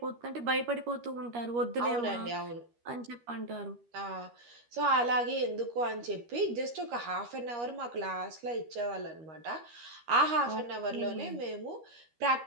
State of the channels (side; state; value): left; late; 13 ms